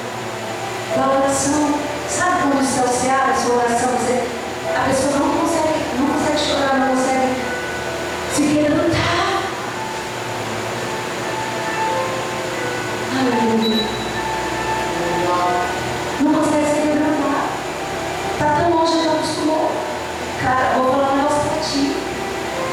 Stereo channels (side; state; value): both; identical; correlation 1.00